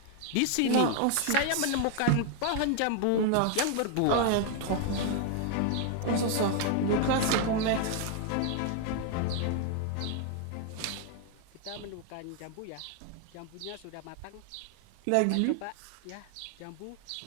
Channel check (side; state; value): both; different; correlation 0.00